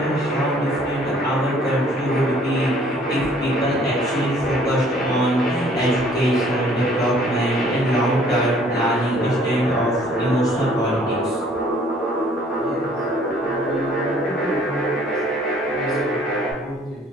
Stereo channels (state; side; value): normal; both; correlation 0.58